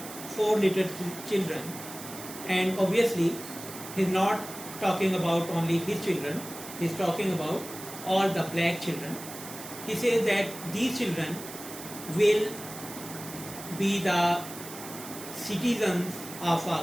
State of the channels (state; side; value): noise; right; hiss, 12 dB below the sound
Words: 4 little children, and obviously he's not talking about only his children, he's talking about all the black children. He says that these children will be the citizens of